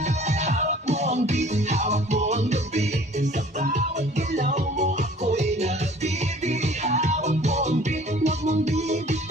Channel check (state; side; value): normal; both; correlation 0.50